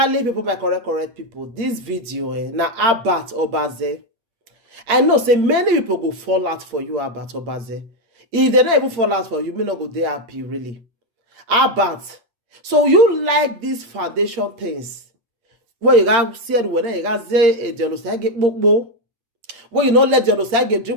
people, my correct people, this video na Abat Obaze. I know say many people go fall out for you, Abat Obaze. If they don't even fall out for you, may not go there happy really. Abat, so you like these foundation things? Where you got said when you got say a genocide get book. When you not let genocide get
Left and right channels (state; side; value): late; left; 8.6 ms